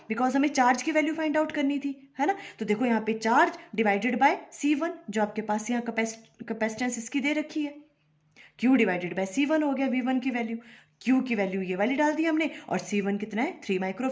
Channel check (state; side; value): identical; both; correlation 1.00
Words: बिकॉज हमें चार्ज की वैल्यू फाइंड आउट करनी थी, है ना। तो देखो यहाँ पे चार्ज डिवाइडेड बाय C1, जो आपके पास यहाँ कैपेसिटेंस इसकी दे रखी है, Q डिवाइडेड बाय C1 हो गया V1 की वैल्यू। Q की वैल्यू ये वाली डाल दी हमने, और C1 कितना है? 3